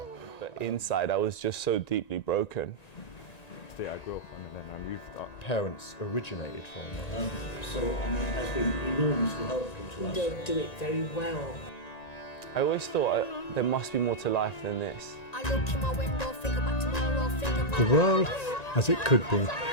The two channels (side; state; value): right; late; 1.9 ms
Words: But inside I was just so deeply broken. I grew up on and then I moved. Our parents originated from so it has been enormously helpful to us. You don't do it very well. I always thought there must be more to life than this. I look in my window, think about tomorrow, think about the world as it could be. Do